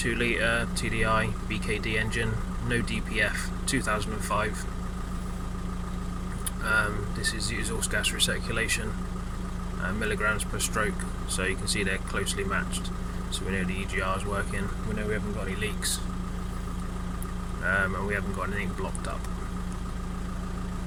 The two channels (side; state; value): both; identical; correlation 1.00